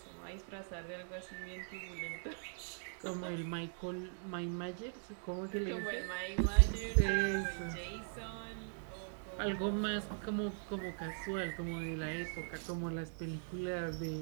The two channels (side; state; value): left; silent; digital silence